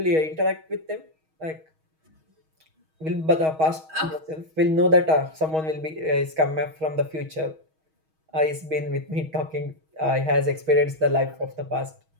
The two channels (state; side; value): late; left; 6.3 ms